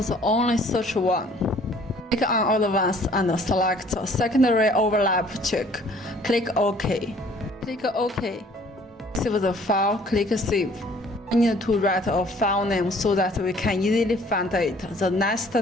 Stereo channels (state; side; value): normal; both; correlation 0.56